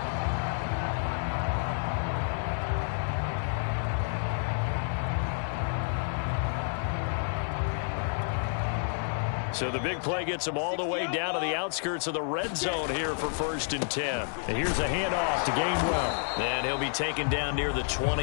So the big play gets them all the way down to the outskirts of the red zone here for 1st and 10. And here's a handoff to Gainwell. And he'll be taken down near the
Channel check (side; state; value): right; silent; 58 dB below the other